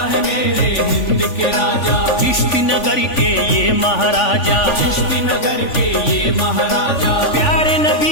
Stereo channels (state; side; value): late; right; 3.5 ms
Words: है मेरे हिंद के राजा, चिश्ती नगर के ये महाराजा, चिश्ती नगर के ये महाराजा, प्यारे